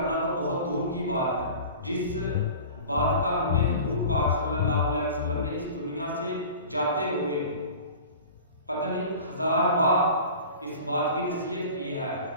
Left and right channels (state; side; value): inverted; both; correlation -0.38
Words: تو بہت دور کی بات ہے۔ جس بات کا ہمیں حضور پاک صلی اللہ علیہ وسلم نے اس دنیا سے جاتے ہوئے پتہ نہیں 1000 بار اس بات کی نصیحت کی ہے